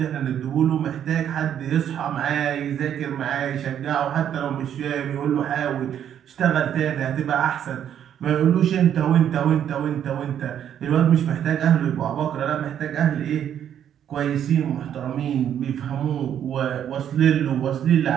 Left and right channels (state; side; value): quieter; left; 9.6 dB